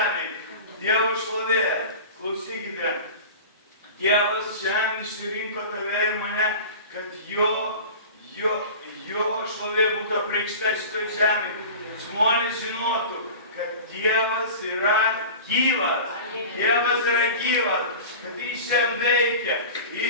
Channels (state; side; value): inverted; both; correlation -0.35